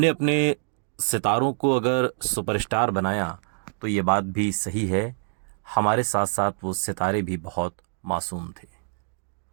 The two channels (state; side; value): silent; left; digital silence